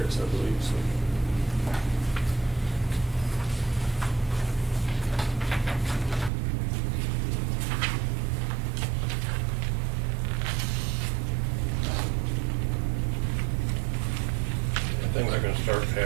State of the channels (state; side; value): drops out; left; at 6.3 s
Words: I believe. So. start